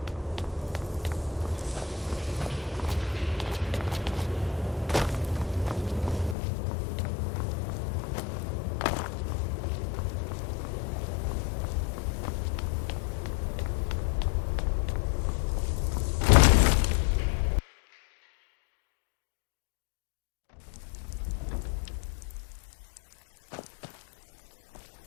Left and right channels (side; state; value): right; drops out; at 6.4 s